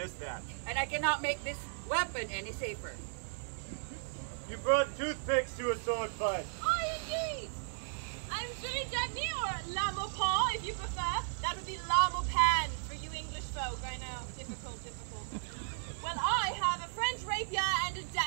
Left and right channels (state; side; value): silent; left; digital silence